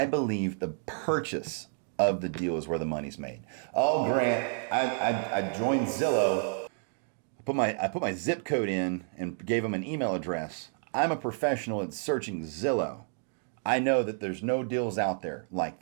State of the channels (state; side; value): silent; left; 58 dB below the other